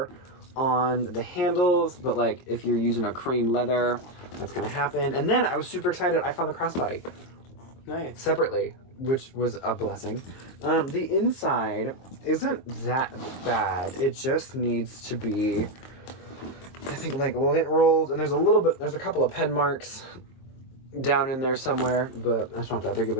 on the handles, but like if you're using a cream leather, that's gonna happen. And then I was super excited. I found the crossbody. Nice. Separately, which was a blessing. The inside isn't that bad. It just needs to be, I think, like lint rolled, and there's a couple of pen marks down in there somewhere, but that's not that big of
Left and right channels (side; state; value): right; late; 23 ms